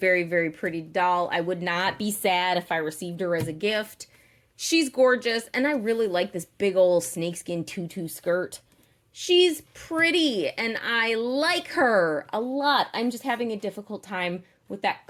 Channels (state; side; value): identical; both; correlation 1.00